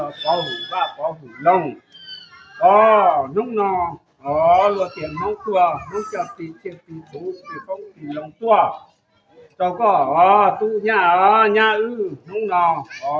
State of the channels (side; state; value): both; identical; correlation 1.00